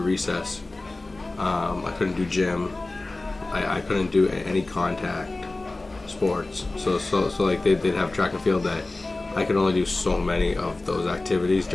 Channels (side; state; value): right; quieter; 3.1 dB